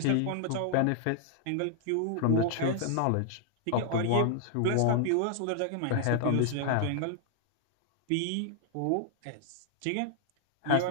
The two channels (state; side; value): different; both; correlation 0.00